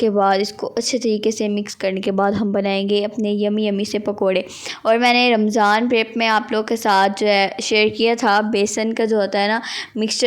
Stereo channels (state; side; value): identical; both; correlation 1.00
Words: बाद इसको अच्छे तरीके से मिक्स करने के बाद हम बनाएंगे अपने यमी से पकोड़े। और मैंने रमज़ान प्रेप में आप लोगों के साथ जो है शेयर किया था बेसन का जो होता है ना